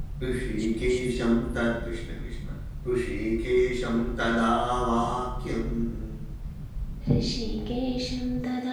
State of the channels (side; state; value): both; identical; correlation 1.00